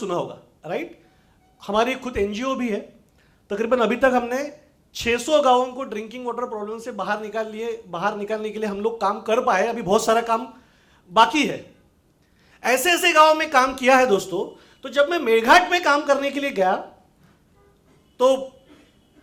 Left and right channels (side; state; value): both; identical; correlation 1.00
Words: होगा, राइट? हमारी खुद एनजीओ भी है। तकरीबन अभी तक हमने 600 गांवों को ड्रिंकिंग वाटर प्रॉब्लम से बाहर निकालने के लिए हम लोग काम कर पाए। अभी बहुत सारा काम बाकी है। ऐसे ऐसे गांवों में काम किया है दोस्तों। तो जब मैं मेरघाट में काम करने के लिए गया तो